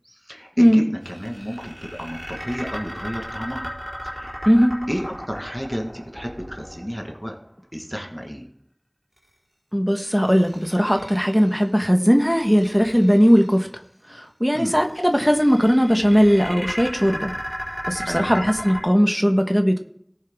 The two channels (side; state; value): both; identical; correlation 1.00